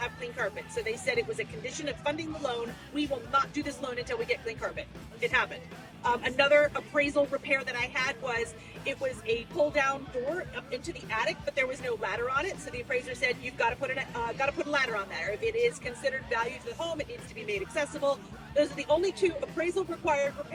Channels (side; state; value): both; identical; correlation 1.00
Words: clean carpet. So they said it was a condition of funding the loan. We will not do this loan until we get clean carpet. It happened. Another appraisal repair that I had was, it was a pull down door up into the attic, but there was no ladder on it. So the appraiser said, you've got to put a ladder on there. If it is considered value to the home, it needs to be made accessible. Those are the only two appraisal required